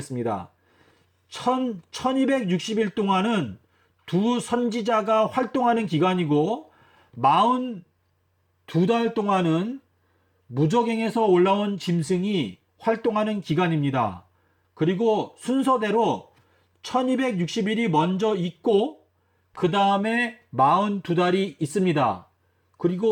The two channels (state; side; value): identical; both; correlation 1.00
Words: 1260일 동안은 두 선지자가 활동하는 기간이고 42달 동안은 무저갱에서 올라온 짐승이 활동하는 기간입니다. 그리고 순서대로 1260일이 먼저 있고 그 다음에 42달이 있습니다.